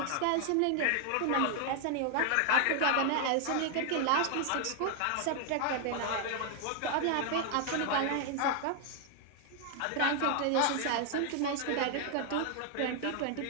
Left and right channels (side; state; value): both; different; correlation 0.00